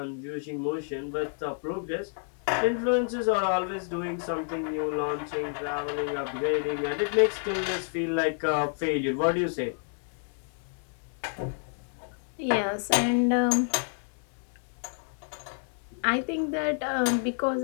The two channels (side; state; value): right; silent; 55 dB below the other